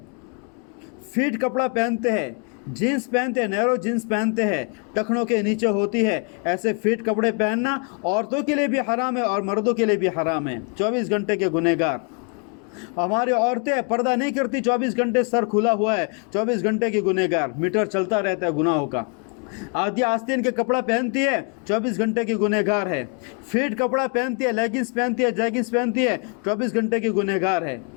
फिट कपड़ा पहनते हैं, जीन्स पहनते हैं, नैरो जीन्स पहनते हैं, टखनों के नीचे होती है। ऐसे फिट कपड़े पहनना औरतों के लिए भी हराम है और मर्दों के लिए भी हराम है। 24 घंटे के गुनहगार। हमारी औरतें पर्दा नहीं करती, 24 घंटे सर खुला हुआ है, 24 घंटे की गुनहगार। मीटर चलता रहता है गुनाहों का। आधी आस्तीन के कपड़ा पहनती है, 24 घंटे की गुनहगार है। फिट कपड़ा पहनती है, लेगिंग्स पहनती है, जैगिंग्स पहनती है, 24 घंटे की गुनहगार है।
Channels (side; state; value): right; quieter; 37.8 dB